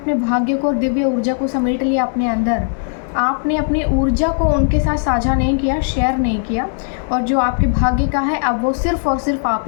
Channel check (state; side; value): silent; right; 65 dB below the other